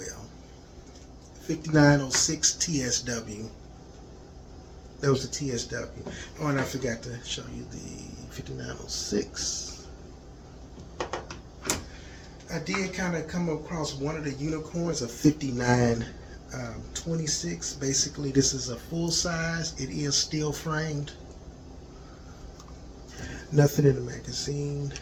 5906 TSW. That was the TSW. Oh, and I forgot to show you the 5906. I did kind of come across one of the unicorns, a 5926. Basically, this is a full size. It is steel framed. Nothing in the magazine,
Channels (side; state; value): both; identical; correlation 1.00